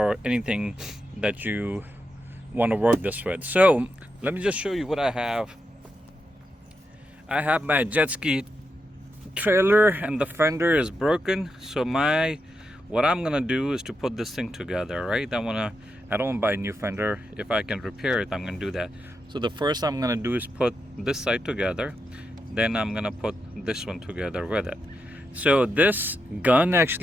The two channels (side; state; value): both; normal; correlation 0.85